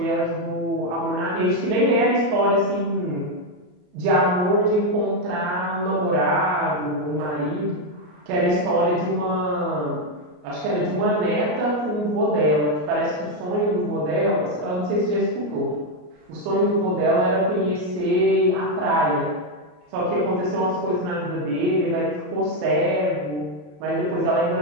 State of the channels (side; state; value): left; late; 33 ms